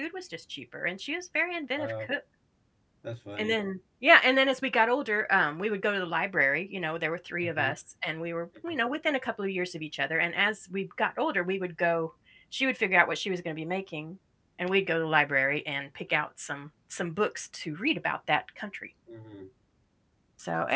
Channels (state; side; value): identical; both; correlation 1.00